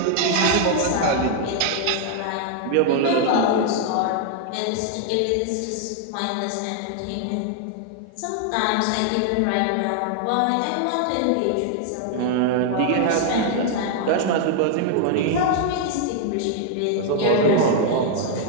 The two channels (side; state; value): both; different; correlation 0.00